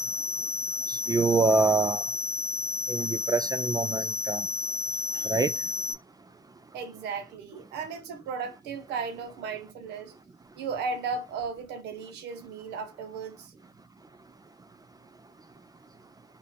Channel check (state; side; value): normal; both; correlation 0.46